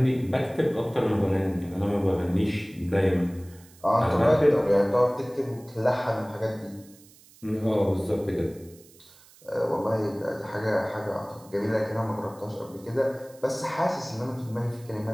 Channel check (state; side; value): noise; right; hiss, 25 dB below the sound